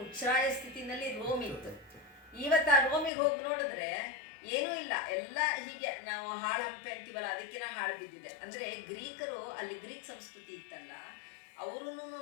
ಉಚ್ಛ್ರಾಯ ಸ್ಥಿತಿನಲ್ಲಿ ರೋಮ್ ಇತ್ತು. ಇವತ್ತು ಆ ರೋಮಿಗೆ ಹೋಗಿ ನೋಡಿದ್ರೆ ಏನೂ ಇಲ್ಲ, ಎಲ್ಲ ಹೀಗೆ ನಾವು ಹಾಳು ಹಂಪೆ ಅಂತೀವಲ್ಲ, ಅದಕ್ಕಿಂತ ಹಾಳು ಬಿದ್ದಿದೆ. ಅಂದ್ರೆ ಗ್ರೀಕರು, ಅಲ್ಲಿ ಗ್ರೀಕ್ ಸಂಸ್ಕೃತಿ ಇತ್ತಲ್ಲ, ಅವರು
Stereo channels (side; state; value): right; drops out; at 3.1 s